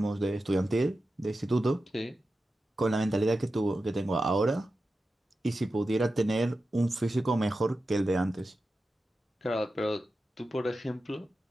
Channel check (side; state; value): both; normal; correlation 0.92